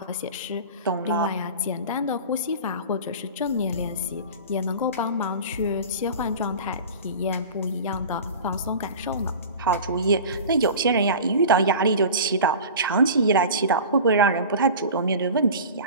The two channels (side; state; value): both; inverted; correlation -0.36